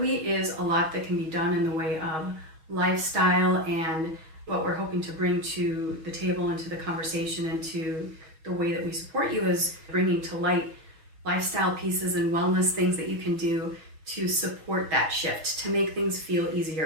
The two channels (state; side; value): late; left; 6.2 ms